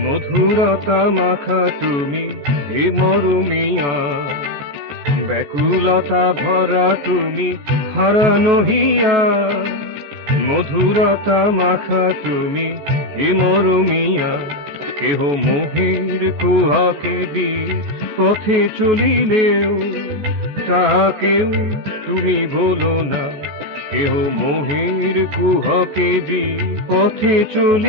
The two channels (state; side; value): late; left; 14 ms